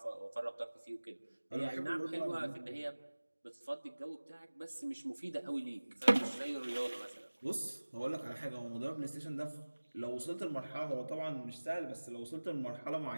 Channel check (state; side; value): inverted; both; correlation -1.00